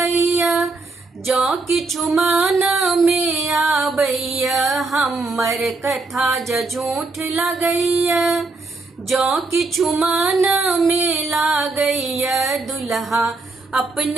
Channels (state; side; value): quieter; left; 3.6 dB